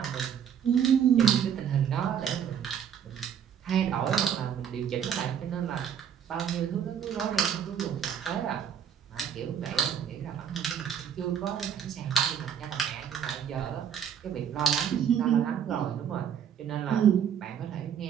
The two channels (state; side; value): quieter; left; 8.1 dB